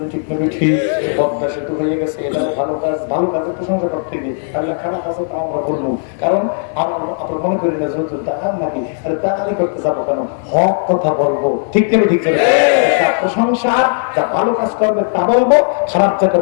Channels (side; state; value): right; silent; 58 dB below the other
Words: ঠিক নেই? ঠিক। পদ্মা সেতু হয়ে গেছে, এটা ভালো কাজ, ভালো কাজের প্রশংসা করতে গিয়ে তাহলে খারাপ আছে তা আমরা বলবো, কারণ আমরা মনে করি না যেহেতু দাঁড়ান নাকি, আরে দাঁড়ালি করতে যাবো কেন, হক কথা বলবো, ঠিক নেই? ঠিক নেই? প্রশংসা, যা ভালো কাজ করবে তা বলবো, খারাপ যা